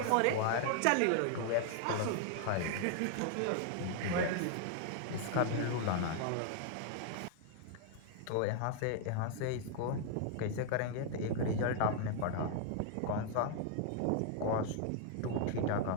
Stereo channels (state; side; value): different; both; correlation 0.00